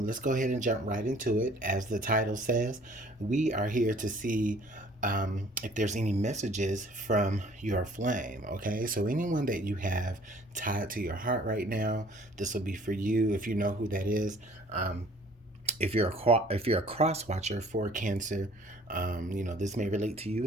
go ahead and jump right into it. As the title says, we are here to see if there's any messages from your flame. Okay, so anyone that you have tied to your heart right now, this will be for you. If you know who that is, if you're a cross watcher for Cancer, this may relate to you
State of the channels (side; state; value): both; normal; correlation 0.54